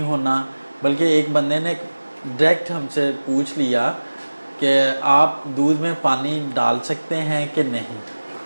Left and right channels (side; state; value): both; inverted; correlation -1.00